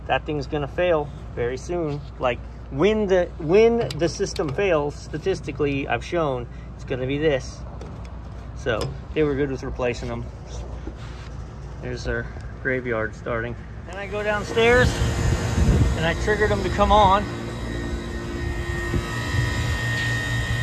that thing's gonna fail very soon. Like when the system fails, statistically, I've shown it's gonna be this. So they were good with replacing them. There's our graveyard starting. Then I go downstairs and I triggered them to come on.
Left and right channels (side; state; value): both; identical; correlation 1.00